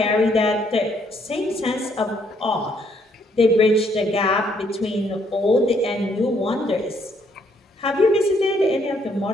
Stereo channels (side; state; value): both; normal; correlation 0.69